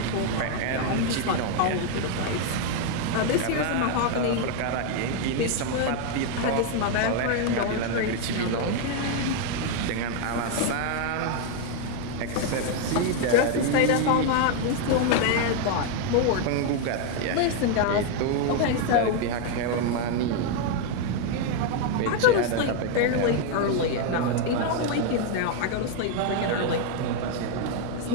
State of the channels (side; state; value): both; different; correlation 0.01